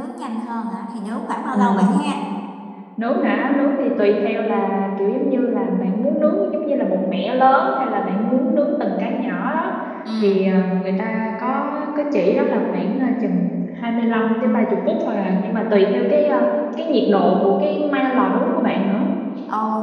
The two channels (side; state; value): both; identical; correlation 1.00